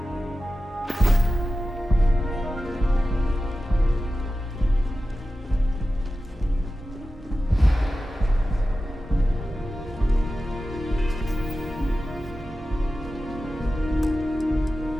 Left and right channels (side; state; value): both; normal; correlation 0.94